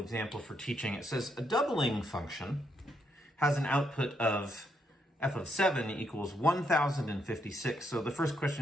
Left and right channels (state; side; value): normal; both; correlation 0.77